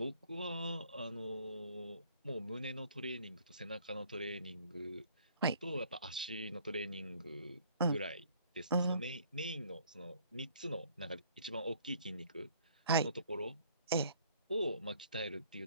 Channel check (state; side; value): inverted; both; correlation -0.59